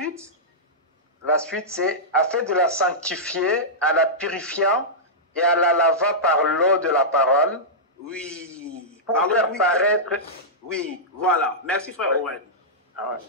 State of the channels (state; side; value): normal; both; correlation -0.12